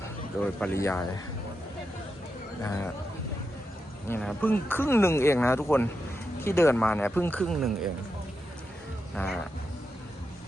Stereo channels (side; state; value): both; normal; correlation 0.87